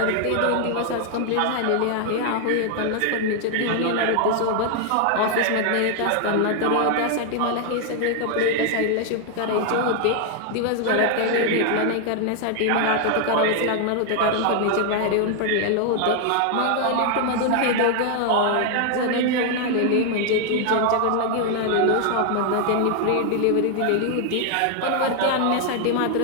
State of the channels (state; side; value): different; both; correlation 0.00